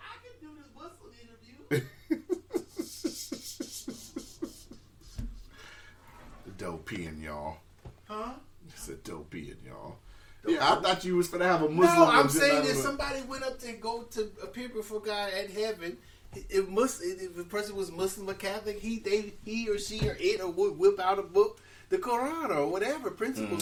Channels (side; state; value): both; identical; correlation 1.00